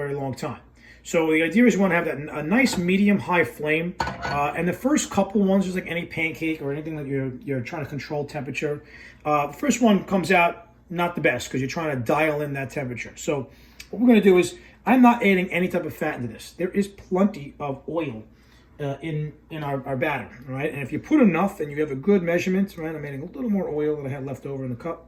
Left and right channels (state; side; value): identical; both; correlation 1.00